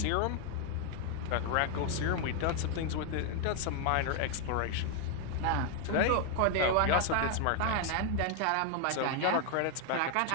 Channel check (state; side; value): different; both; correlation 0.00